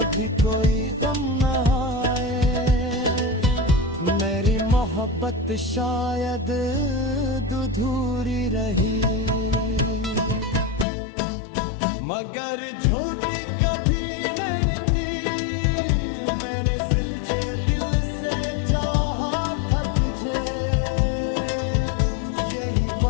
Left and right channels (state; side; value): drops out; right; at 10.9 s